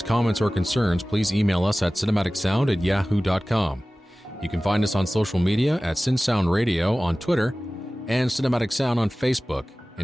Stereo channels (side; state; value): both; normal; correlation 0.97